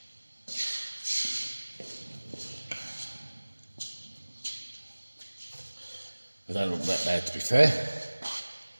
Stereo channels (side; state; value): both; inverted; correlation -1.00